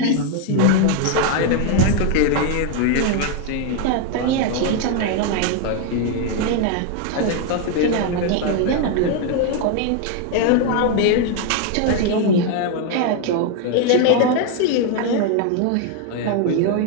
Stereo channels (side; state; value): both; different; correlation 0.01